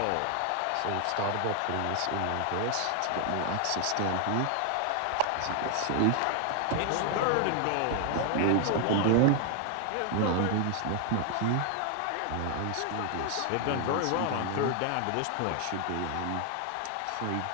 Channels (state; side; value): different; both; correlation 0.00